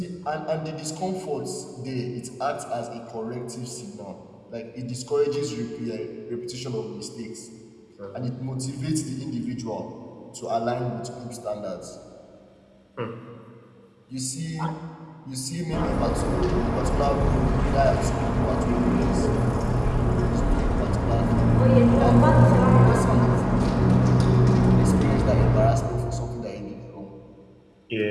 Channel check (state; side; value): identical; both; correlation 1.00